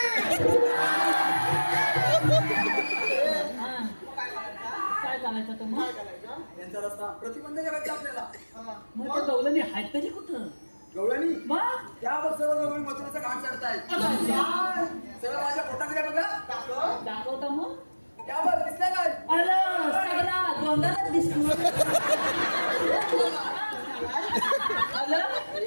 काय करायचं तर मग. यांचा रस्ता प्रतिबंध करायचा आपल्याला. मग त्या गवळणी आहेत तरी कुठं. गवळणी मग त्यावर सर्व गवळी मथुरेचा घाट चढतायत. सगळं माझ्या पोटाकडे बघा. दाखवता मग. त्यावर दिसल्या काय. आलं सगळा गोंधळच दिसतो. आलं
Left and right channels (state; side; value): inverted; both; correlation -1.00